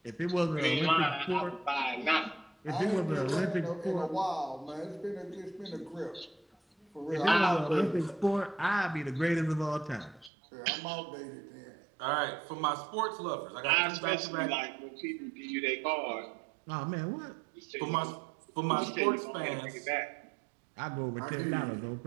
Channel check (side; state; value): left; drops out; at 10.3 s